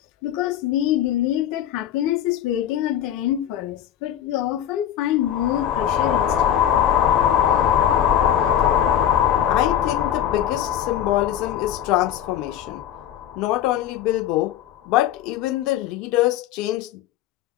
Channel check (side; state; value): right; quieter; 10.8 dB